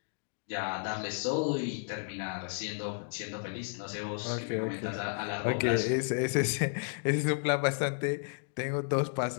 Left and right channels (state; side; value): silent; right; digital silence